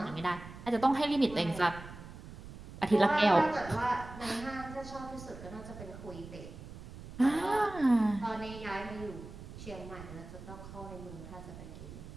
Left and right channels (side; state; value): right; noise; rumble, 14 dB below the sound